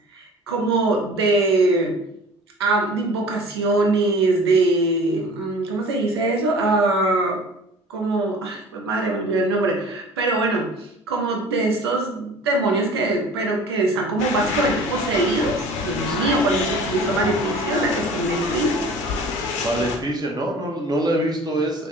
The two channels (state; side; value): normal; both; correlation 0.44